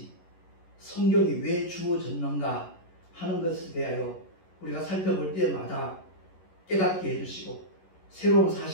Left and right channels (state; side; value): late; right; 11 ms